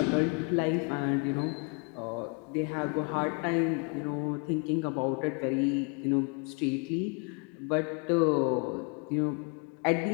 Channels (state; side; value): quieter; right; 33.8 dB